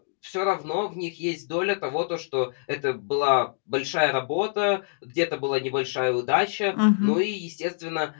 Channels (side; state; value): right; silent; digital silence